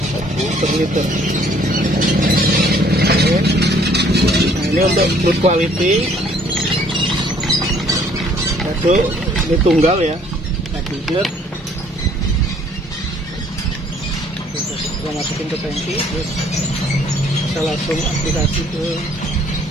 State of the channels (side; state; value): both; normal; correlation 0.60